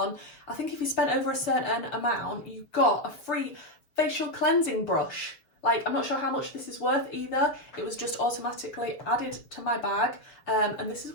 I think if you spent over a certain amount, you got a free facial cleansing brush. Like, I'm not sure how much this is worth either. It was just automatically added to my bag, and this is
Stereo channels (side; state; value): right; late; 7.1 ms